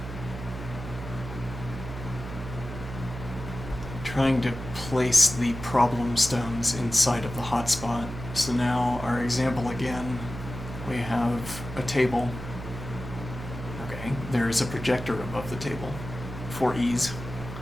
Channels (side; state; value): right; noise; hum, 10 dB below the sound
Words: place the problem stones inside of the hotspot. So now our example again, we have a table. Okay, there is a projector above the table for ease.